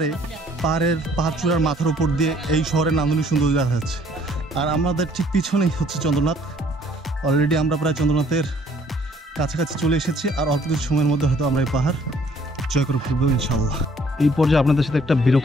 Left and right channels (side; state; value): both; normal; correlation 0.61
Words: পাহাড় চূড়ার মাথার উপর দিয়ে এই শহরের নান্দনিক সৌন্দর্য দেখা যাচ্ছে। আর আমাদের ঠিক পিছনেই হচ্ছে চন্দ্রনাথ। অলরেডি আমরা প্রায় চন্দ্রনাথের কাছাকাছি চলে এসেছি, আর অল্প কিছু সময়ের মধ্যে হয়তো আমরা এই পাহাড় জয় করে ফিরবো ইনশাআল্লাহ। এই পর্যায়ে আপনাদের সাথে একটা